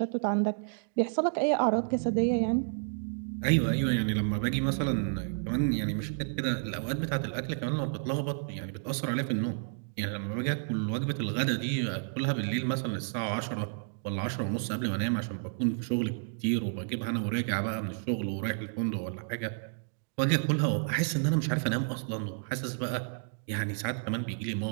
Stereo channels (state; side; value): silent; left; digital silence